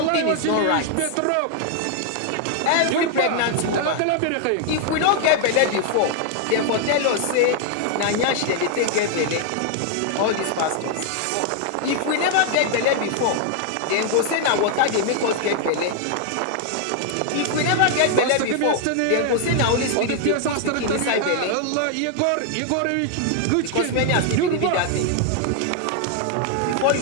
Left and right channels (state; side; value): different; both; correlation 0.00